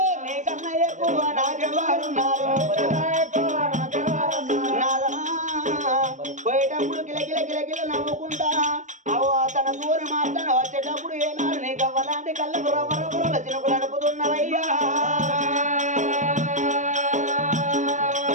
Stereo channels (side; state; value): left; late; 0.35 ms